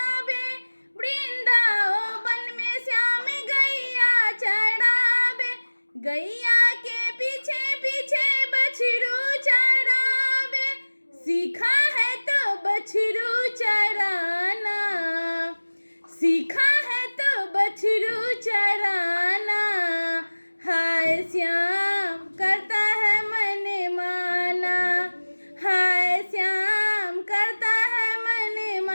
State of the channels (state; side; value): inverted; both; correlation -1.00